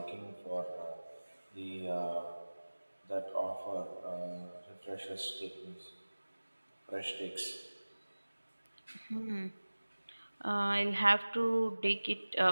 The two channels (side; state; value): both; inverted; correlation -1.00